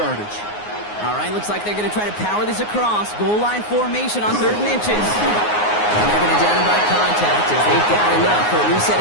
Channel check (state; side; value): late; right; 9.6 ms